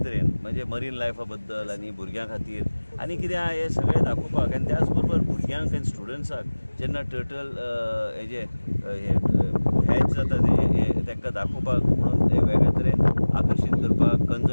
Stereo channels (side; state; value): both; inverted; correlation -1.00